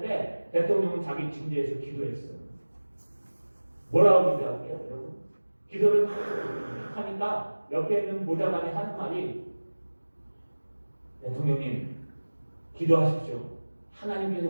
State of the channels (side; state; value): both; inverted; correlation -1.00